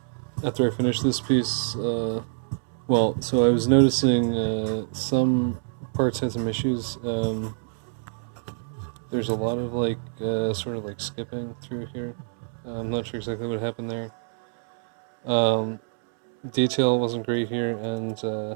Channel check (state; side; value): silent; left; digital silence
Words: After I finish this piece, so I was noticing some parts had some issues. There's a lot of sort of like skipping through here. I'm not sure exactly what happened there. Detail wasn't great here, and